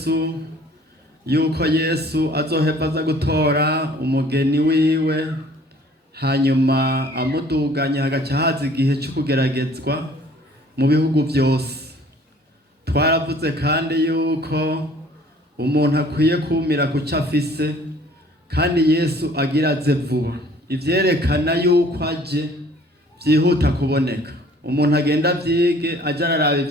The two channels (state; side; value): normal; both; correlation 0.54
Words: yuko Yesu azoheva aza gutora umugeni wiwe, hanyuma amuduganya hagaca haza igihe cyo kugeragezwa mu bihugu byose. Twaravuze kandi yuko umuntu akwiye kumira ku cyo afise, kandi Yesu agira aze vuba. Ivyerekana yuko aje byihuta kuboneka. Umuntu agenda vyige aja araraba